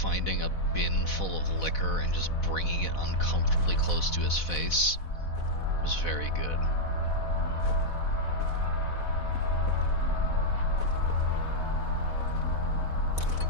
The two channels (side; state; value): right; late; 4.1 ms